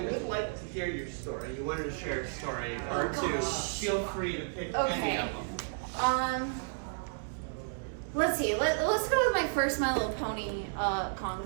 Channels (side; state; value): left; silent; digital silence